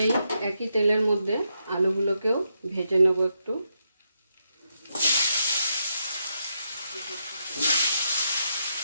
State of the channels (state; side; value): inverted; both; correlation -0.82